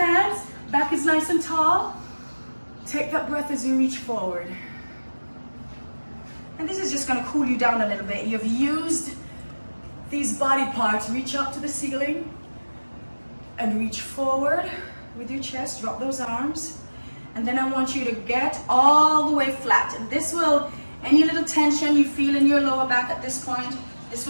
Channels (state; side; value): inverted; both; correlation -1.00